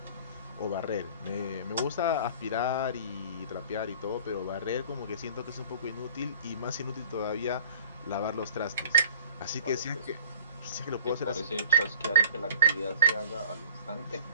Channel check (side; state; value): both; inverted; correlation -0.47